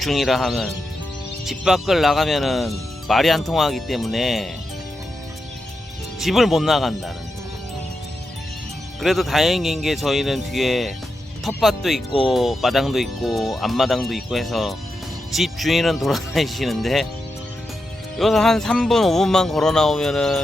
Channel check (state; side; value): normal; both; correlation 0.87